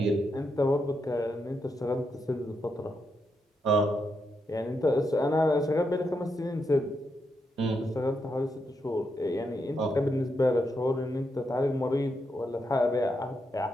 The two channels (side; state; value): both; normal; correlation 0.82